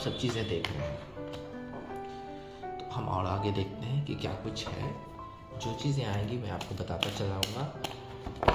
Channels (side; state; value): both; identical; correlation 1.00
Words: चीज़ें देख रहे हैं। तो हम और आगे देखते हैं कि क्या कुछ है। जो चीज़ें आएंगी मैं आपको बताता चलाऊँगा।